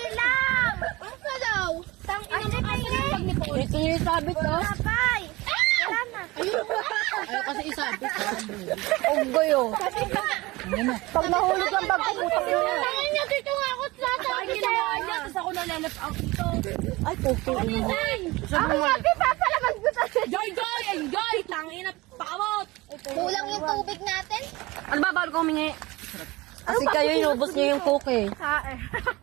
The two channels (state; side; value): quieter; left; 21.2 dB